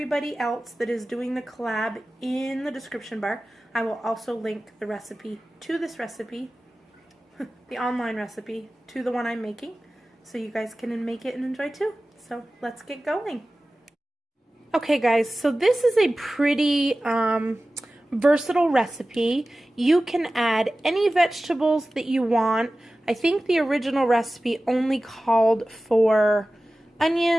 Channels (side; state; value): both; normal; correlation 0.96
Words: else that is doing the collab in the description bar, I will also link the recipe to this recipe, the online recipe, to the one I'm making, so you guys can make it and enjoy too. So let's get going. Okay guys, so this is a pretty versatile recipe. You can add any vegetables that you want. I think the original recipe only called for